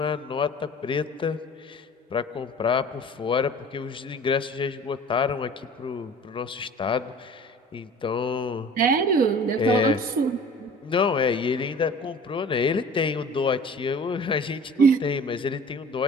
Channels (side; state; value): both; normal; correlation 0.44